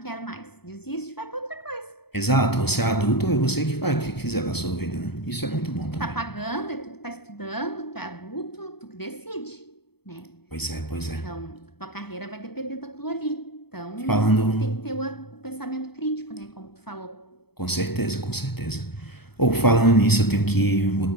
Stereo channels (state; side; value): late; right; 0.97 ms